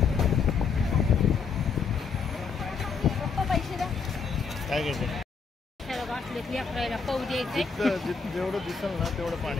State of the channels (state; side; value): quieter; right; 5.3 dB